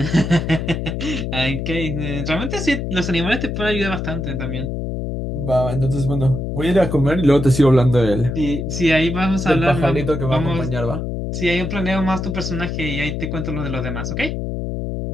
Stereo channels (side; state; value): left; noise; hum, 3 dB below the sound